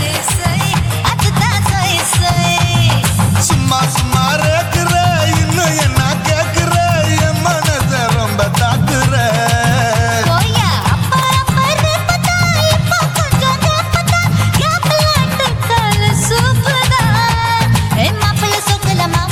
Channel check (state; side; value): identical; both; correlation 1.00